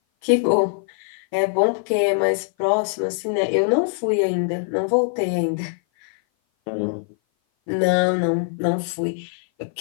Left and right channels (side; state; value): right; silent; 57 dB below the other